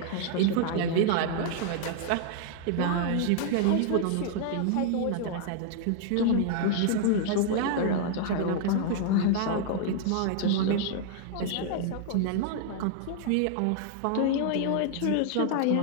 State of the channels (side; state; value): both; different; correlation -0.01